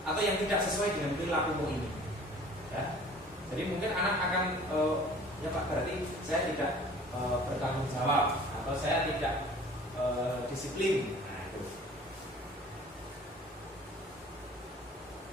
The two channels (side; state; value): both; normal; correlation 0.48